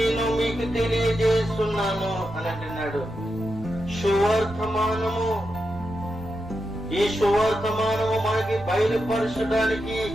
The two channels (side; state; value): right; noise; rumble, 16 dB below the sound